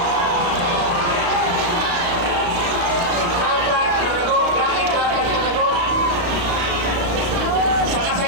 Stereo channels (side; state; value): left; late; 35 ms